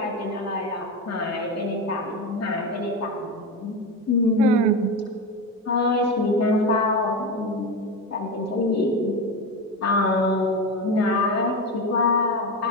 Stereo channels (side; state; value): both; normal; correlation 0.19